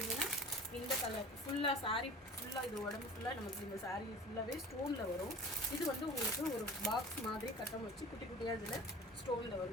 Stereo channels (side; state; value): both; normal; correlation 0.40